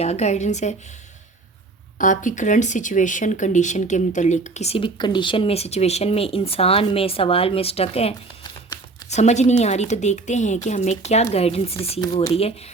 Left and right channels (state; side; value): quieter; left; 3.6 dB